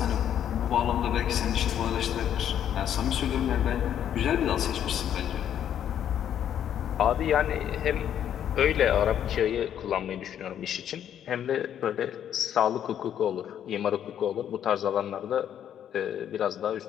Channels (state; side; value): quieter; right; 9.9 dB